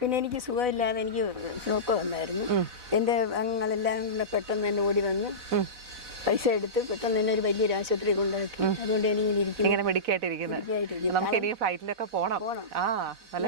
എനിക്ക് സുഖമില്ലാതെ എനിക്ക് സ്ട്രോക്ക് വന്നായിരുന്നു. എൻ്റെ അംഗങ്ങളെല്ലാം കൂടെ പെട്ടെന്ന് തന്നെ ഓടി വന്ന് പൈസ എടുത്ത് പെട്ടെന്ന് തന്നെ ഒരു വലിയൊരു ആശുപത്രി കൊണ്ടുപോയി. അതുകൊണ്ട് ഇങ്ങനെ മെഡിക്കായിട്ടിരിക്കുന്നത്. നമുക്ക് ഇനി ഫ്ലൈറ്റിലൊക്കെ പോണം. നല്ല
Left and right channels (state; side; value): late; left; 4.0 ms